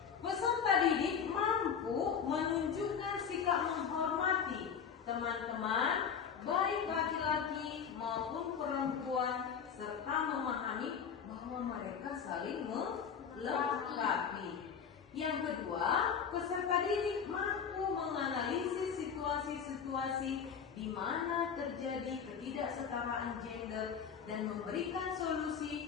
Peserta didik mampu menunjukkan sikap menghormati teman-teman, baik laki-laki maupun perempuan, serta memahami bahwa mereka saling melengkapi. Yang kedua, peserta didik mampu menganalisis situasi-situasi di mana terjadi ketidaksetaraan gender dan memberikan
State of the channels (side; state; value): right; quieter; 7.1 dB